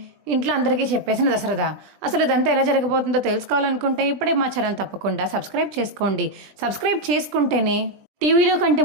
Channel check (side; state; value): left; late; 20 ms